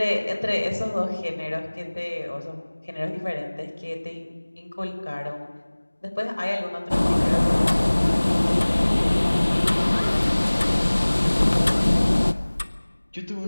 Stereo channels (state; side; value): inverted; both; correlation -1.00